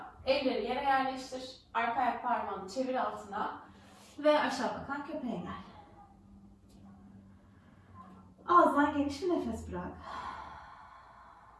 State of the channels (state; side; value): identical; both; correlation 1.00